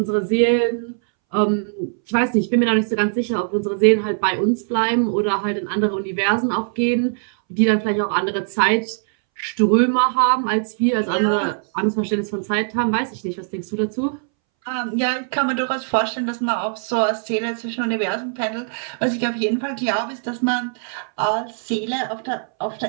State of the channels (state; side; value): silent; left; 64 dB below the other